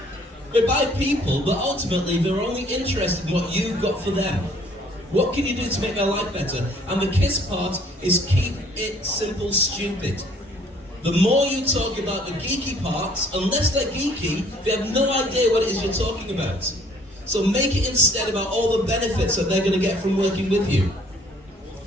they buy people, but ultimately they're only interested in what you've got for them. What can you do to make their life better? And the KISS part is keep it simple, stupid. The more you talk about the geeky parts, unless they're geeky, they have no idea what it is you're talking about. So make it instead about all the benefits that they're going to get from working with you.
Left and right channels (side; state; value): both; normal; correlation 0.58